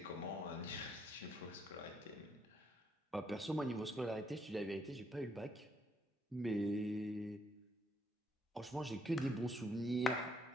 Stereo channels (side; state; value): both; normal; correlation 0.72